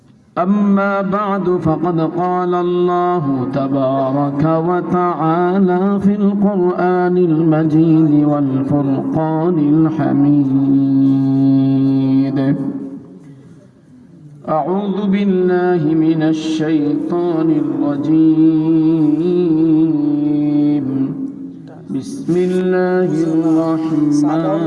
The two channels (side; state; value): both; identical; correlation 1.00